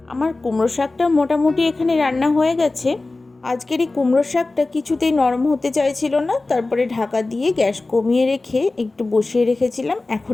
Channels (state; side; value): quieter; right; 3.3 dB